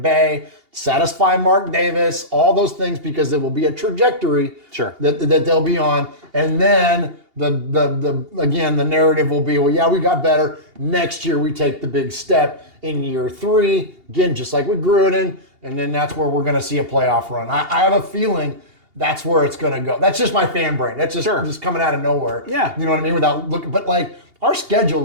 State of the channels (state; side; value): late; left; 2.8 ms